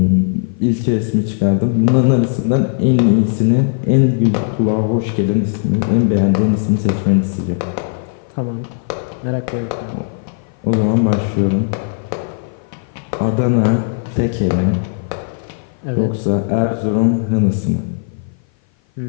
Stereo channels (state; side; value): silent; right; 56 dB below the other